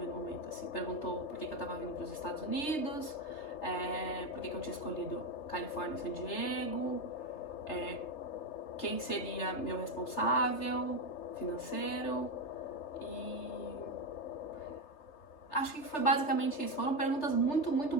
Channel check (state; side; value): late; right; 3.3 ms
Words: momento, assim. Perguntou por que eu tava vindo para os Estados Unidos, por que eu tinha escolhido Califórnia e San Diego, quem seria meu responsável financeiro, e acho que foi basicamente isso. Foram perguntas muito